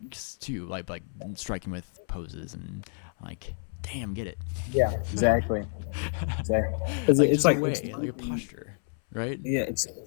too, like striking with poses and like damn, get it. Yeah, exactly. Exactly. Because Like it's just a like, way, like a posture, right? yeah, it's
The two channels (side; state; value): right; silent; 59 dB below the other